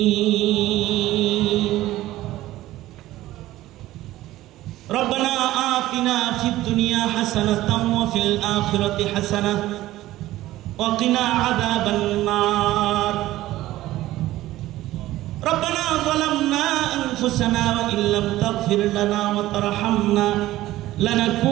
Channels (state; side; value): quieter; left; 15.7 dB